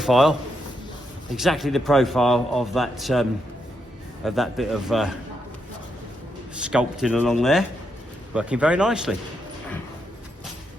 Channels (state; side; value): normal; both; correlation 0.81